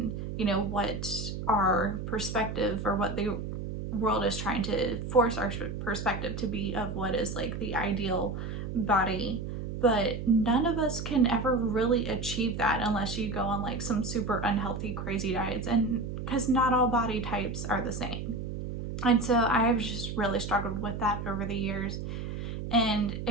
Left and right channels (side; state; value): right; noise; hum, 6 dB below the sound